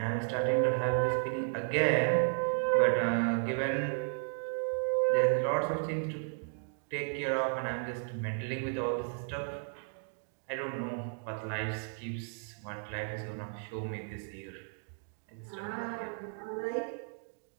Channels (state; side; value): silent; left; 55 dB below the other